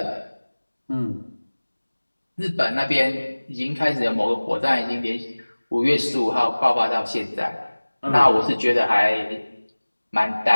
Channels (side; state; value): both; inverted; correlation -1.00